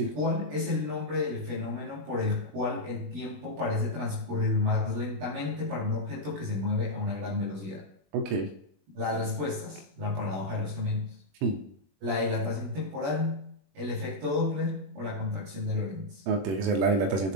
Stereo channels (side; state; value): left; late; 20 ms